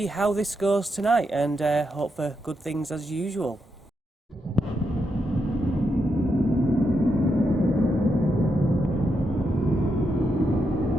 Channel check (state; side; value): normal; both; correlation 0.83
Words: how this goes tonight and hope for good things as usual.